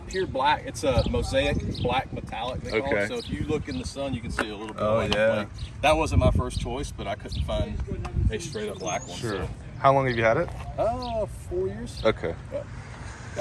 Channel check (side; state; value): both; identical; correlation 1.00